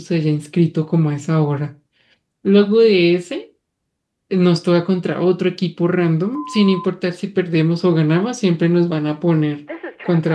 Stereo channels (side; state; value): both; identical; correlation 1.00